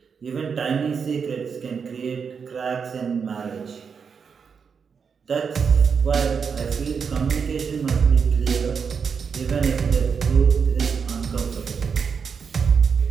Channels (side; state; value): left; quieter; 6.1 dB